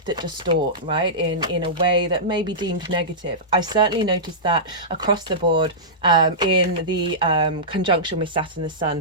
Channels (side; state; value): both; normal; correlation -0.16